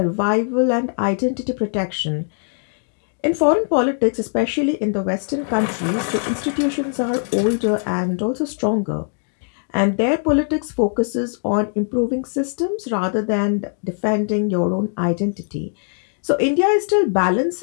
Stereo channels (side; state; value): right; silent; 65 dB below the other